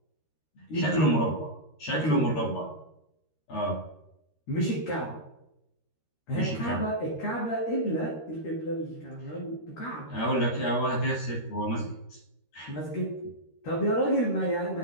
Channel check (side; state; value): right; late; 13 ms